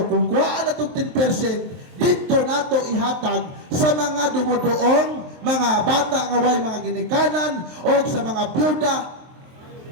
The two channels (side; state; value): left; late; 23 ms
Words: kung kuhaan na itong 10%, dito nato ihatag sa mga dumudoong, mga bata nga way mga ginikanan, o sa mga byuda,